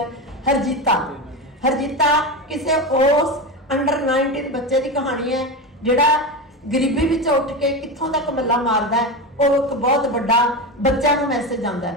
ਹਰਜੀਤਾ ਕਿਸੇ ਉਸ ਅੰਡਰ 19 ਬੱਚੇ ਦੀ ਕਹਾਣੀ ਹੈ ਜਿਹੜਾ ਗਰੀਬੀ ਵਿੱਚ ਉੱਠ ਕੇ ਕਿੱਥੋਂ ਤੱਕ ਮੱਲਾ ਮਾਰਦਾ ਹੈ। ਉਹ ਇੱਕ ਬਹੁਤ ਵੱਡਾ ਬੱਚਿਆਂ ਨੂੰ ਮੈਸੇਜ ਆਉਂਦਾ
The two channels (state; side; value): normal; both; correlation 0.19